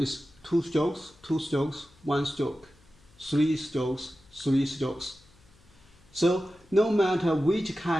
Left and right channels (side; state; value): left; noise; hum, 28 dB below the sound